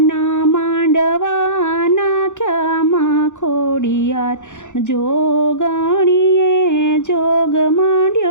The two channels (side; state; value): right; late; 0.85 ms